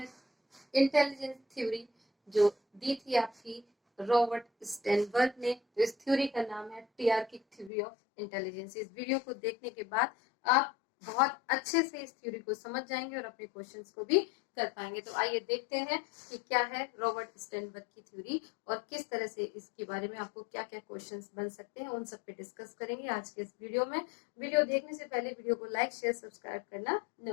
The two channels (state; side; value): drops out; right; at 7.7 s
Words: इंटेलिजेंस थ्योरी, जो दी थी आपकी रॉबर्ट स्टेनबर्ग ने। तो इस थ्योरी का नाम है टीआरकिक थ्योरी ऑफ इंटेलिजेंस। इस वीडियो को देखने के बाद आप बहुत अच्छे से इस थ्योरी को समझ जाएंगे और अपने क्वेश्चंस को भी कर पाएंगे। तो आइए देखते हैं कि क्या है रॉबर्ट स्टेनबर्ग की थ्योरी और किस तरह से इसके बारे में आपको क्या क्या क्वेश्चंस बन सकते हैं, उन सब पे डिस्कस करेंगे आज के इस वीडियो में। वीडियो देखने से पहले वीडियो को लाइक शेयर सब्सक्राइब करना